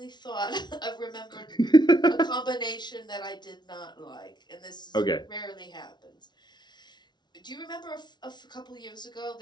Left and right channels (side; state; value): right; late; 0.20 ms